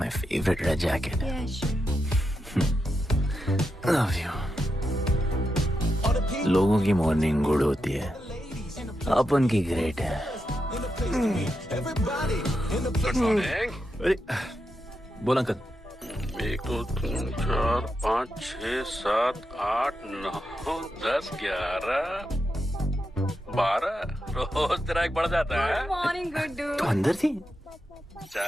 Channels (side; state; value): both; normal; correlation 0.86